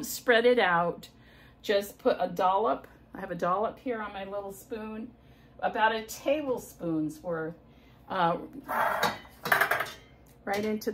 spread it out. Just put a dollop. I have a dollop here on my little spoon. About a tablespoon's worth. Right into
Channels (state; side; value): identical; both; correlation 1.00